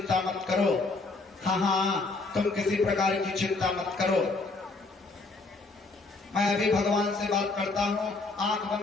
मत करो। हाँ, तुम किसी प्रकार की चिंता मत करो, मैं अभी भगवान से बात करता हूँ। आंख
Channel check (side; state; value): right; quieter; 3.6 dB